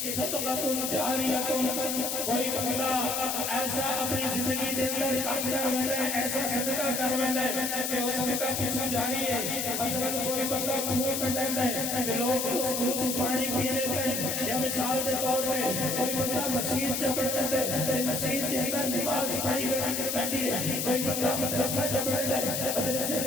صدقہ جاریہ۔ کوئی بندہ ایسا اپنی زندگی دے اندر کام کر رہا ہے، ایسا صدقہ کر رہا ہے کہ وہ صدقہ پیچھے جاری ہے۔ مثلا کوئی بندہ کنواں کٹیندا ہے تے لوگ اس کنویں سے پانی پینے پہ، یا مثال کے طور پہ کوئی بندہ مسجد چپڑتا ہے، مسجد کے اندر نماز پڑھی رہتی ہے، کوئی بندہ مدرسہ چپڑتا ہے، مدرسے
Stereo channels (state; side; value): noise; left; hiss, 1 dB below the sound